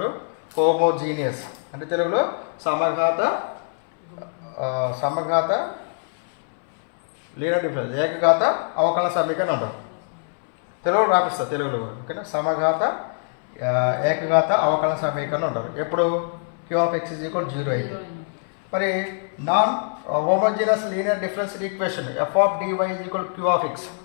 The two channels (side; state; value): right; silent; 63 dB below the other